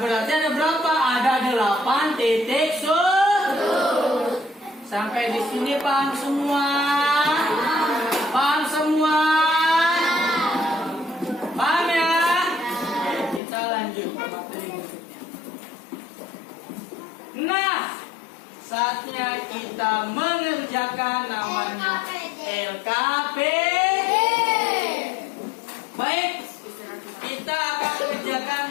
ada berapa? Ada 8 titik sudut. Sampai di sini paham semua? Paham semua? Paham ya? Oke, kita lanjut ke materi berikutnya. Nah, saatnya kita mengerjakan namanya LKPD. Baik, kita akan kerjakan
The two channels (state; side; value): drops out; right; at 13.4 s